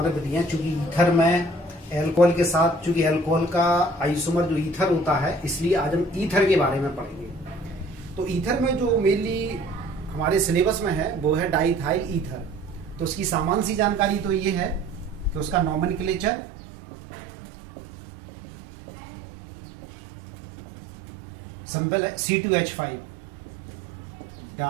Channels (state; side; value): drops out; left; at 16.3 s